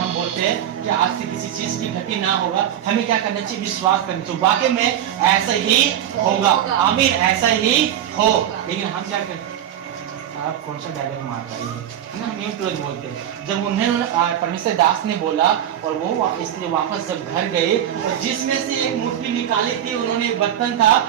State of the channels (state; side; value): quieter; left; 10.7 dB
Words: बोलते हैं कि आज से किसी चीज की घटी ना होगा, हमें क्या करना चाहिए, विश्वास करना चाहिए, वाकई में ऐसा ही होगा, आमीन, ऐसा ही हो। लेकिन हम क्या करते हैं, आप कौन सा डायलॉग मार रहे हैं ना, न्यू तुरंत बोलते हैं। जब उन्हें परमेश्वर दास ने बोला, और वो इसलिए वापस जब घर गए, तो जिसमें से एक मुट्ठी निकाली थी, उन्होंने एक बर्तन था